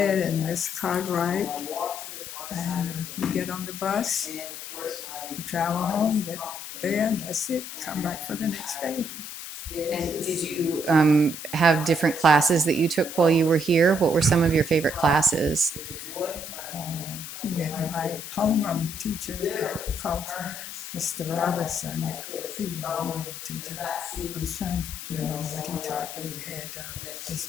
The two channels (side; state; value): left; noise; hiss, 9 dB below the sound